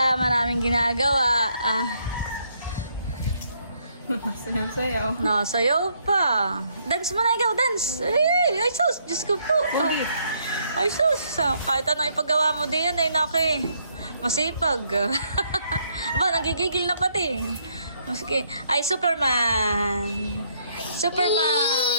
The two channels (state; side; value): inverted; both; correlation -0.70